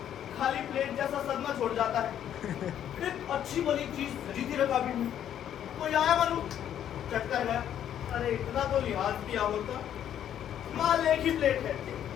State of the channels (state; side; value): quieter; right; 10.2 dB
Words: खाली प्लेट जैसा सदमा छोड़ जाता है। एक अच्छी भली चीज सजी थी रखा भी नहीं, कोई आया मालूम चट कर गया। अरे इतना तो लिहाज किया होता, माल एक ही प्लेट है।